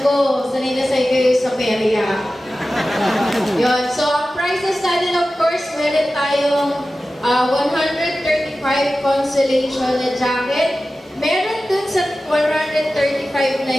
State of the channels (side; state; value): both; normal; correlation 0.95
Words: ko, sanay na sa'yo kayo sa perya. Yun. So, ang prizes natin, of course, meron tayong 135 consolation na jacket. Meron dun sa 135 35 na